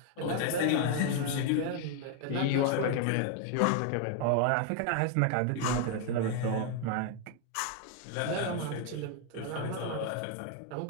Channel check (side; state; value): both; different; correlation 0.00